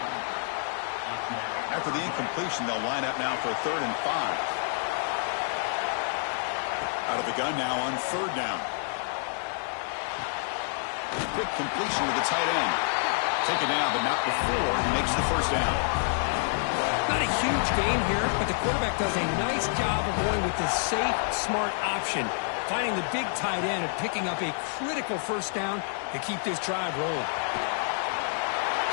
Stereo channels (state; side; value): silent; right; digital silence